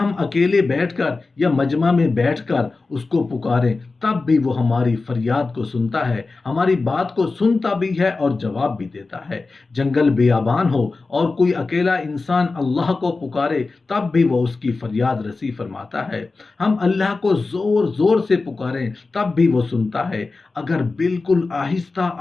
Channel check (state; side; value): quieter; right; 3.8 dB